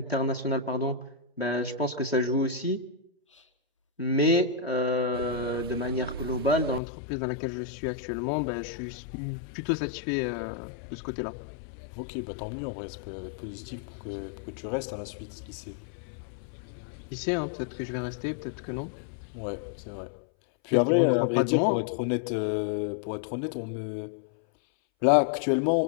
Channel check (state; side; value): drops out; right; at 6.8 s